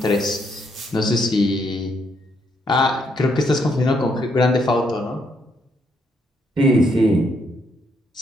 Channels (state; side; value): normal; both; correlation 0.74